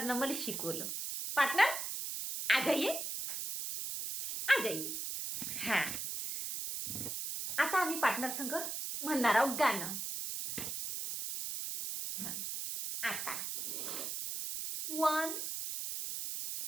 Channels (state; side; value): noise; right; hiss, 4 dB below the sound